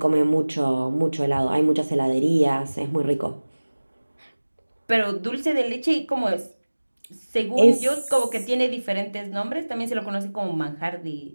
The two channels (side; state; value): both; inverted; correlation -1.00